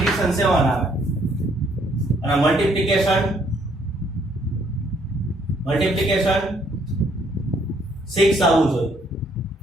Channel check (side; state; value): both; normal; correlation 0.67